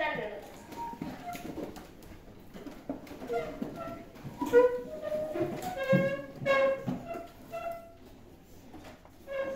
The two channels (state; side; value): identical; both; correlation 1.00